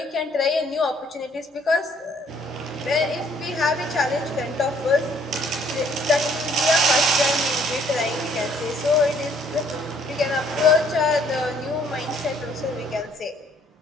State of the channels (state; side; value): normal; both; correlation 0.63